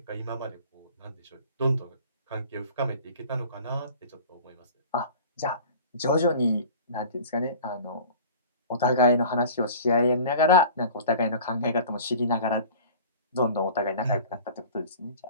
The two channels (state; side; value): inverted; both; correlation -0.42